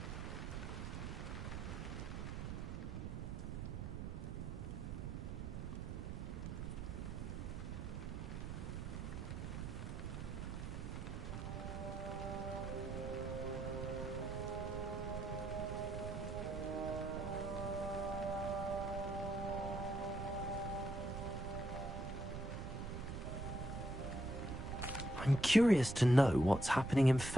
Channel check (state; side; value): noise; right; rumble, 5 dB below the sound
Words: I'm curious to know what's happening in